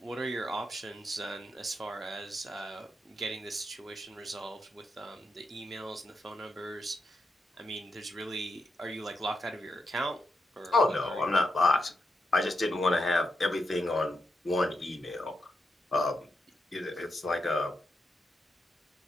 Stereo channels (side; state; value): both; normal; correlation 0.85